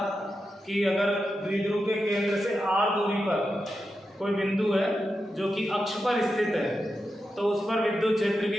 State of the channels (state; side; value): normal; both; correlation 0.89